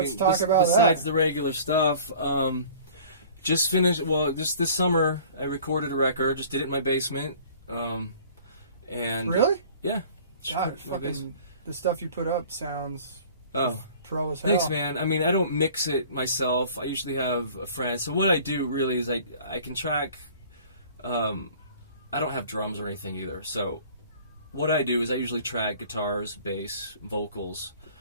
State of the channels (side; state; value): both; inverted; correlation -0.47